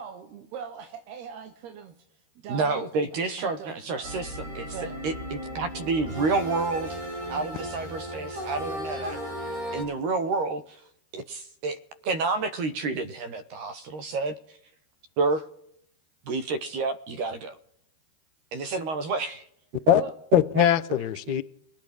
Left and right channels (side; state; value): left; late; 13 ms